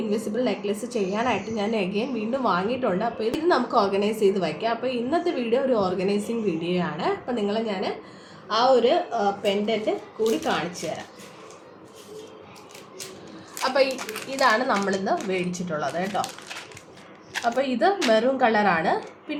ഇൻവിസിബിൾ നെക്ലസ് ചെയ്യാനായിട്ട് ഞാൻ വീണ്ടും വാങ്ങിയിട്ടുണ്ട്. അപ്പോൾ ഇത് നമുക്ക് ഓർഗനൈസ് ചെയ്ത് വയ്ക്കാം. അപ്പോൾ ഇന്നത്തെ വീഡിയോ ഒരു ഓർഗനൈസിങ് വീഡിയോ ആണ്. അപ്പോൾ നിങ്ങളെ ഞാൻ ആ ഒരു പെൻഡൻറ്റ് കൂടി കാണിച്ചു തരാം. അപ്പോൾ ഇതാണ് നമ്മളിന്ന് മേടിച്ചിട്ടുള്ളത് കേട്ടോ. അപ്പോൾ ഇത് മെറൂൺ കളറാണ്.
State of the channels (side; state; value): both; identical; correlation 1.00